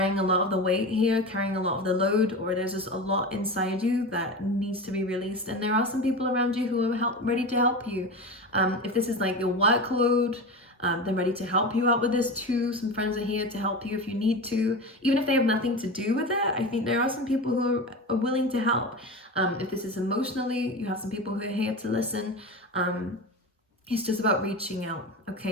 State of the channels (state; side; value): normal; both; correlation 0.26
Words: a lot of the weight here, carrying a lot of the load, or there's just a lot inside you that needs to be released. And there are some people around you who are ready to help you. If this is like your workload, they're ready to help you out with this too. Some friends are here to help you if you need to, even if they have nothing to do with it. I think there are some people who are willing to help. If this is emotionally, you have some people who are here to listen. It's just about reaching out,